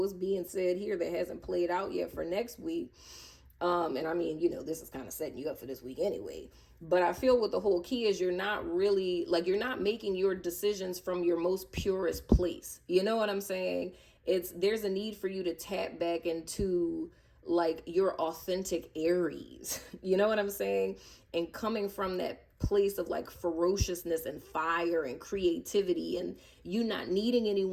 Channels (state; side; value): identical; both; correlation 1.00